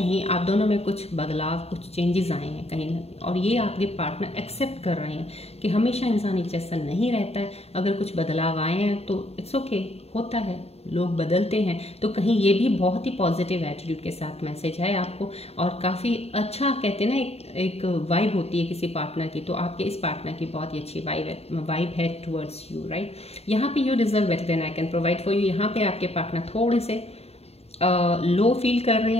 आप दोनों में कुछ बदलाव, कुछ चेंजेस आए हैं कहीं ना कहीं, और ये आपके पार्टनर एक्सेप्ट कर रहे हैं कि हमेशा इंसान एक जैसा नहीं रहता है। अगर कुछ बदलाव आए हैं तो इट्स ओके, होता है, लोग बदलते हैं। तो कहीं ये भी बहुत ही पॉजिटिव एटीट्यूड के साथ मैसेज है आपको, और काफ़ी अच्छा कहते हैं ना, एक वाइब होती है किसी पार्टनर की, तो आपके इस पार्टनर की बहुत ही अच्छी वाइब है टुवर्ड्स यू, राइट। यहाँ पे you deserve better than I can provide for you. यहाँ पे आपके पार्टनर थोड़े से लो फील कर रहे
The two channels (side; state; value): right; late; 0.30 ms